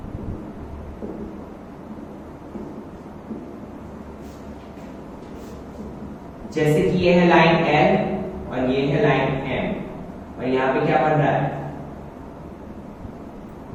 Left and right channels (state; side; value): identical; both; correlation 1.00